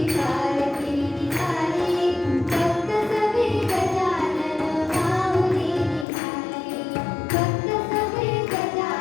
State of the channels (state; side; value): drops out; right; at 6.1 s